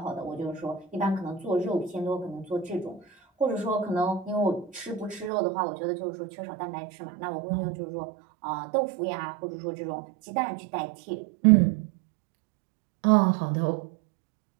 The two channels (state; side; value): drops out; left; at 5.3 s